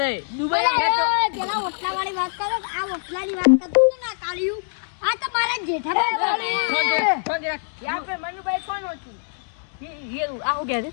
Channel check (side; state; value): right; silent; digital silence